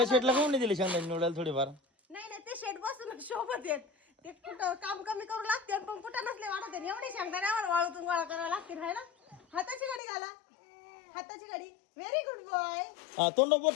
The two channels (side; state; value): right; drops out; at 10.0 s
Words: शेटला कोण नाही दिली शेंगा निवडायला थोडीफार नाही नाही ते शेड बसून शोभत येत ते कुठं काम कमी करू लागते पण कुठं नसले वाढत एवढे शेंगदाण्यावर वाळूतून गोळा करावा लागते हाय ना हाताची गाडी घाला हाताची गाडी व्हेरी गुड बॉय हा तोंड बोट